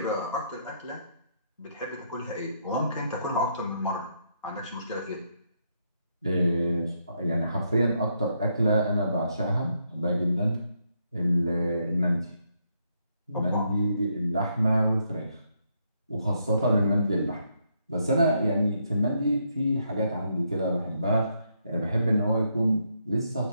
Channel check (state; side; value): inverted; both; correlation -0.76